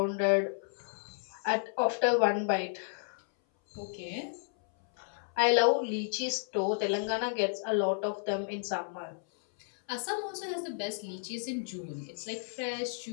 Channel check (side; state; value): right; silent; 56 dB below the other